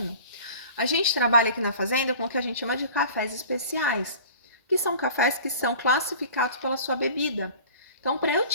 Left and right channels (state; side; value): inverted; both; correlation -0.43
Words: A gente trabalha aqui na fazenda com o que a gente chama de cafés especiais, que são cafés que são classificados pela sua bebida. Então, para eu